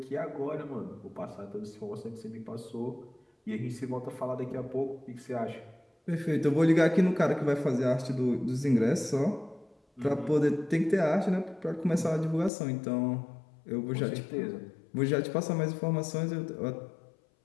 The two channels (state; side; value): drops out; right; at 12.5 s